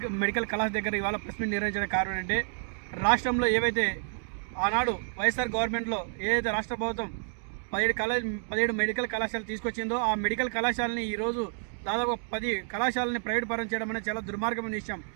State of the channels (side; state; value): left; silent; digital silence